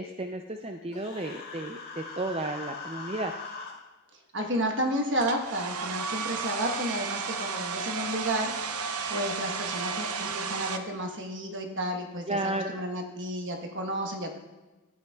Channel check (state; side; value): normal; both; correlation 0.05